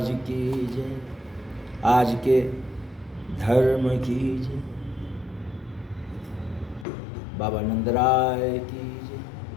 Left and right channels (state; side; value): drops out; right; at 6.9 s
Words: की जय। आज के धर्म की जय। बाबा नंदराय की जय।